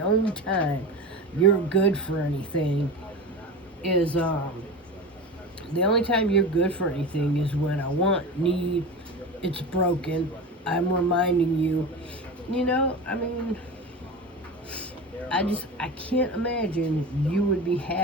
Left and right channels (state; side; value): normal; both; correlation 0.28